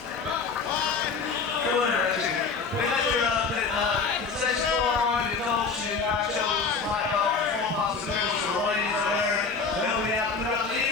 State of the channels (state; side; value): quieter; right; 5.0 dB